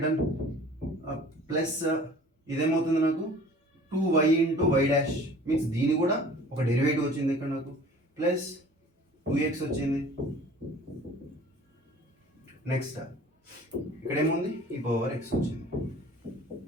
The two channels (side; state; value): both; normal; correlation 0.47